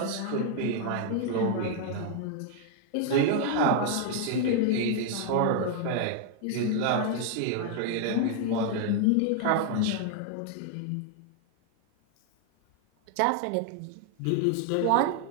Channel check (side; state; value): both; different; correlation 0.00